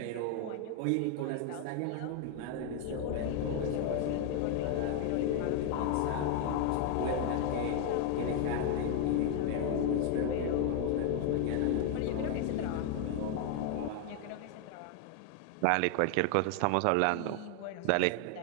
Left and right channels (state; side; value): different; both; correlation 0.00